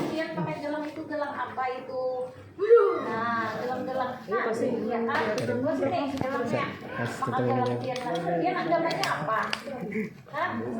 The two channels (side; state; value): both; identical; correlation 1.00